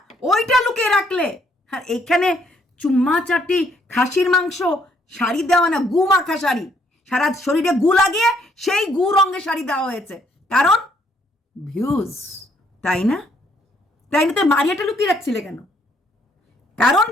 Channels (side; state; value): both; normal; correlation 0.68